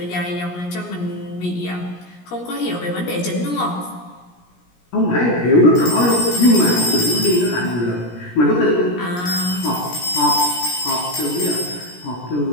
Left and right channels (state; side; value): late; right; 17 ms